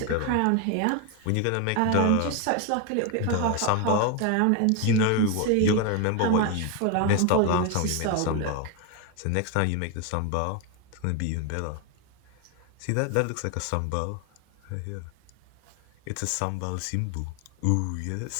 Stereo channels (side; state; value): both; different; correlation 0.01